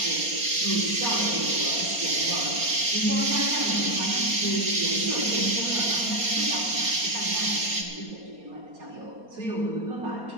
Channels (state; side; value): late; left; 4.2 ms